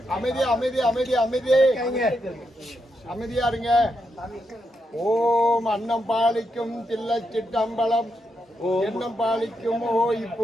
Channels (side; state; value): both; normal; correlation 0.82